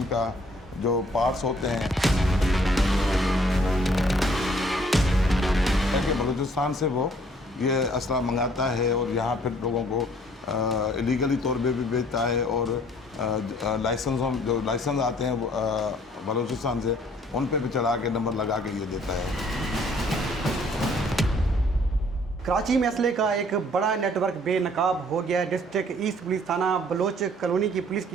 जो पार्ट्स होते हैं कि बलूचिस्तान से वो ये असला मंगाता है और यहाँ फिर लोगों को इलीगली तौर पे भी बेचता है और जो लाइसेंस आते हैं बलूचिस्तान से उन पे भी चढ़ा के नंबर लगा के ये देता है। कराची में असले का एक बड़ा नेटवर्क बेनकाब हो गया है। डिस्ट्रिक्ट ईस्ट पुलिस थाना बलोच कॉलोनी की पुलिस की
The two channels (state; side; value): normal; both; correlation 0.60